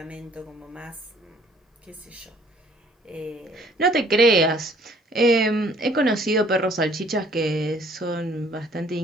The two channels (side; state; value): both; normal; correlation 0.58